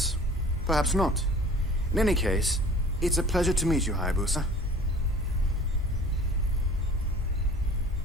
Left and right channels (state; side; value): normal; both; correlation 0.47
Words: Perhaps not. In any case, it's a pleasure to meet you, Hayabusa.